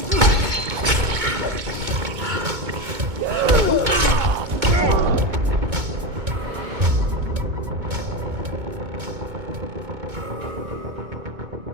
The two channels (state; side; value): late; left; 2.2 ms